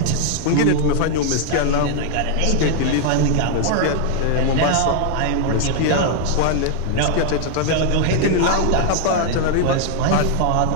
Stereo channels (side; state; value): both; different; correlation 0.00